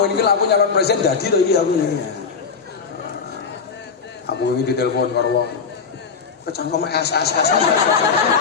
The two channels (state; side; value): quieter; right; 5.7 dB